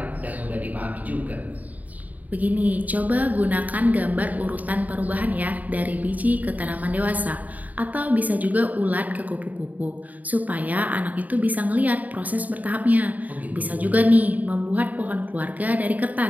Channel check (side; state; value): left; late; 0.076 ms